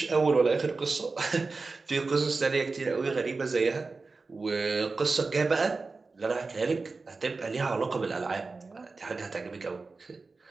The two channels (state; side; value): quieter; left; 4.0 dB